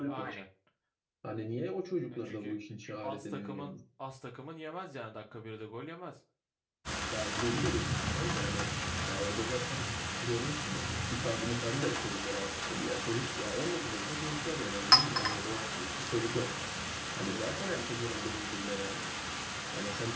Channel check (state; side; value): identical; both; correlation 1.00